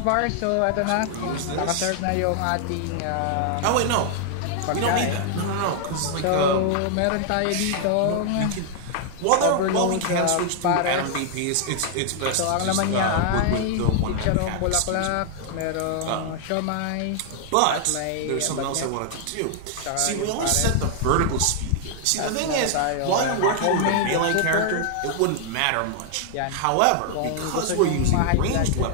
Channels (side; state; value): both; different; correlation 0.00